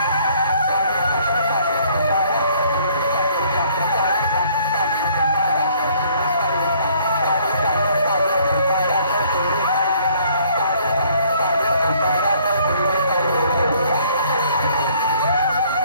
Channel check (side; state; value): both; inverted; correlation -0.61